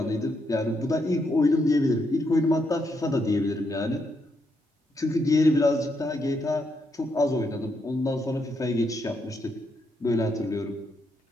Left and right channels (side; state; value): both; normal; correlation 0.79